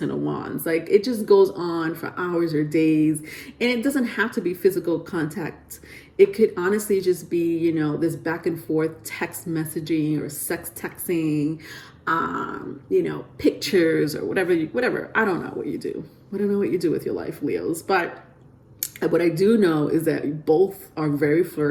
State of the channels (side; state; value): both; identical; correlation 1.00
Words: of Wands. Like it just goes on for hours or days, and it doesn't have to be physical contact. It could honestly just be, you know, this back and forth text messaging or sex texting, you know, pictures or whatever. I don't know what you do. I don't know what you do with your life, Leos. But what I do know is that you both are very